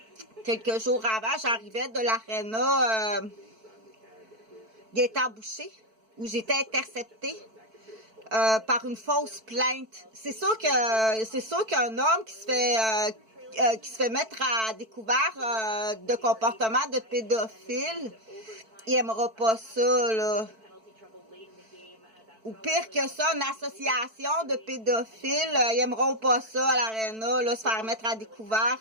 quelques jours avant, j'arrivais de l'aréna Gaétan-Boucher, où j'étais interceptée. Par une fausse plainte. C'est sûr qu'un homme qui se fait mettre à découvert de comportement de pédophile, il aimera pas ça, là. Ou pire que ça, une association de pédophiles, ils aimeront pas ça à l'aréna, là, se faire mettre à découvert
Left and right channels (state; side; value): late; left; 4.5 ms